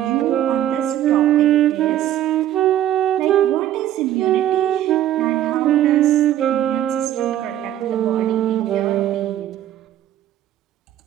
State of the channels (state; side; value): quieter; left; 12.2 dB